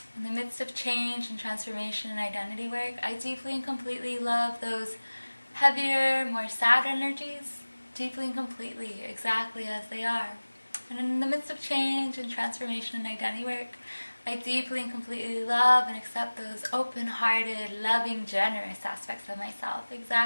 In the midst of change and transformation and identity work, I deeply and completely love those heavier, more sad energies, deeply and completely, exactly as they are. And in the midst of change and transformation and identity work, I deeply and completely love and accept those open-hearted, loving, generous aspects of myself,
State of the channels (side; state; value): both; inverted; correlation -1.00